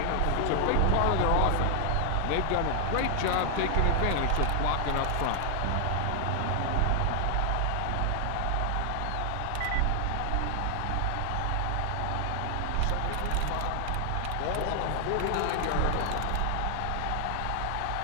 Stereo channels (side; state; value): both; different; correlation 0.00